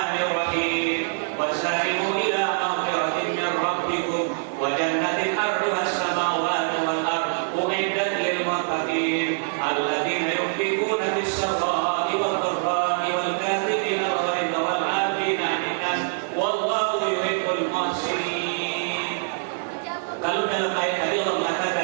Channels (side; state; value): left; silent; digital silence